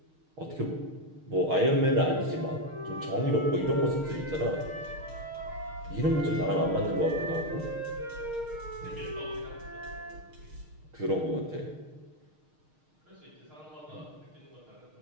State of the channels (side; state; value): left; late; 6.5 ms